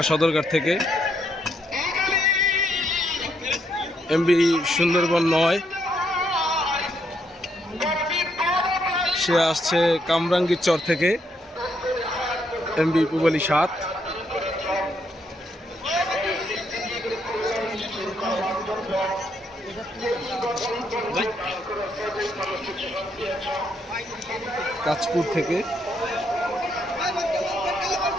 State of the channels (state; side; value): normal; both; correlation 0.75